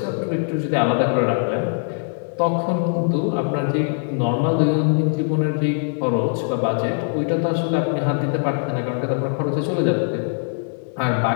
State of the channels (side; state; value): right; silent; 62 dB below the other